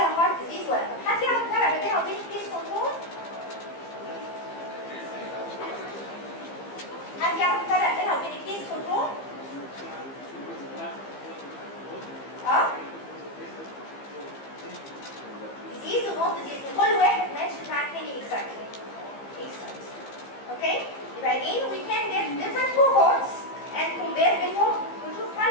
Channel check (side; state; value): right; late; 15 ms